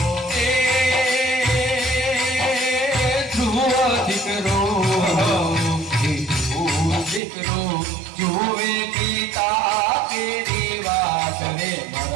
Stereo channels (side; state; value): left; drops out; at 7.2 s